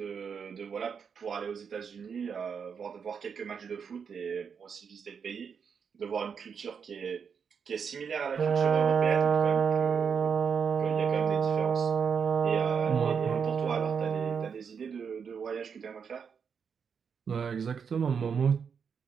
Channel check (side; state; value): left; quieter; 6.5 dB